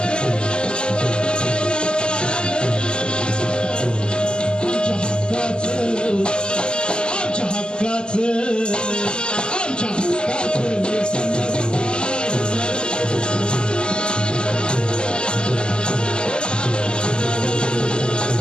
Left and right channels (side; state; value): right; late; 0.048 ms